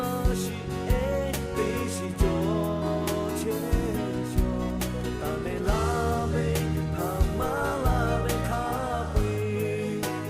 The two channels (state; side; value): identical; both; correlation 1.00